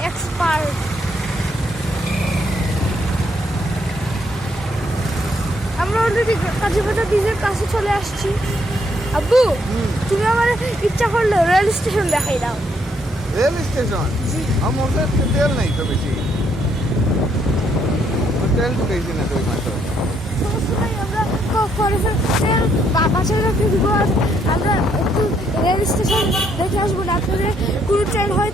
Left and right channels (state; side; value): normal; both; correlation 0.72